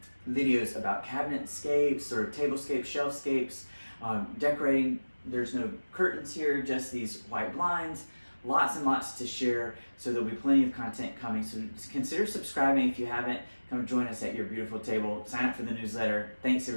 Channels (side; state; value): both; inverted; correlation -1.00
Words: videos about cabinetscapes, sort of tablescapes, shelfscapes, decorating. There's no curtains here, just these white blinds. Lots and lots to share, so there'll be plenty of content coming. So consider subscribing if you haven't. Come join us at Your Beautiful Table. Sign up for the newsletter. Thanks